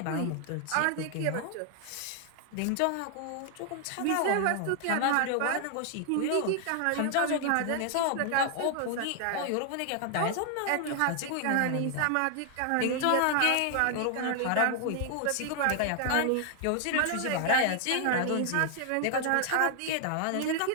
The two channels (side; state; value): both; different; correlation 0.00